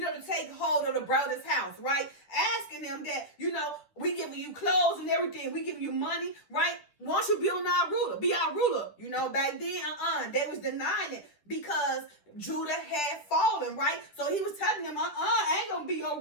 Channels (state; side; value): late; right; 10 ms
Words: take hold of the brother's house, right? Asking them that, we giving you clothes and everything, we giving you money, right? Why don't you be our ruler? Be our ruler. Back then, they was denying it because Judah had fallen, right? So he was telling them, I ain't gonna be